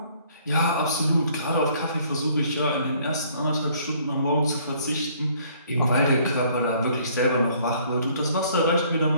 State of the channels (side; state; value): both; inverted; correlation -0.60